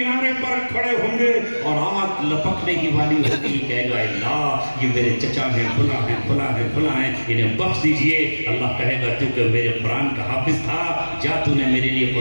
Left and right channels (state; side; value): inverted; both; correlation -1.00